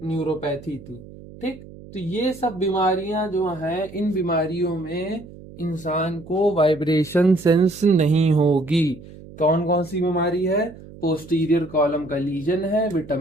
न्यूरोपैथी थी, ठीक। तो ये सब बीमारियां जो हैं, इन बीमारियों में इंसान को वाइब्रेशन सेंस नहीं होगी। कौन कौन सी बीमारी है, पोस्टीरियर कॉलम का लीजन है,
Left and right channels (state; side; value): noise; right; hum, 18 dB below the sound